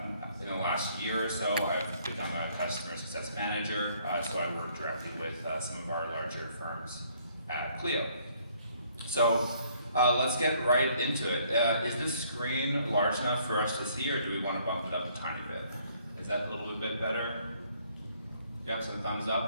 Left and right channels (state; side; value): inverted; both; correlation -0.64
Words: in the last year or so, I've become a customer success manager. So I work directly with some of our larger firms at Clio. So let's get right into it. Is this screen large enough for us to see, or do we want to bump it up a tiny bit? Is that a little bit better? Yep, some thumbs